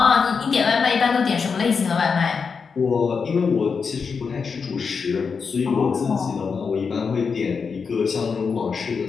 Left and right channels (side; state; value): right; quieter; 5.5 dB